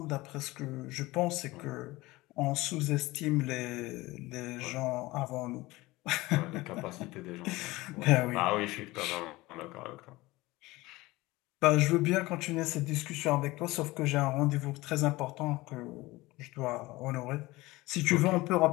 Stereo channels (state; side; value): quieter; right; 20.2 dB